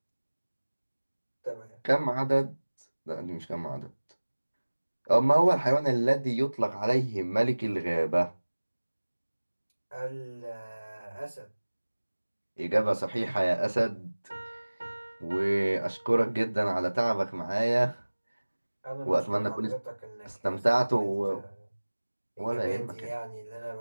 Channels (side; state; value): both; inverted; correlation -1.00